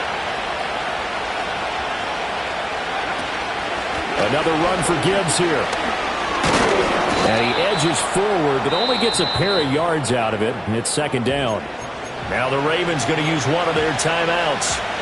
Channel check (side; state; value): both; identical; correlation 1.00